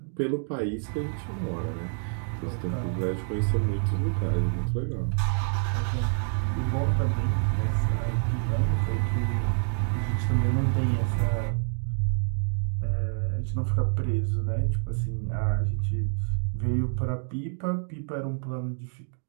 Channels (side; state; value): left; silent; 59 dB below the other